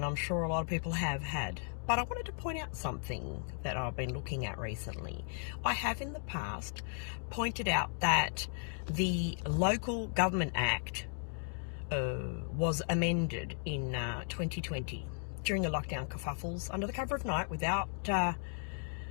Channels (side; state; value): right; silent; 54 dB below the other